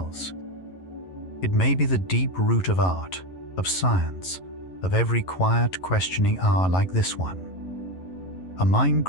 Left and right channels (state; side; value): late; right; 11 ms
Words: It may be the deep root of art, of science, of every quiet, questioning hour like this one. A mind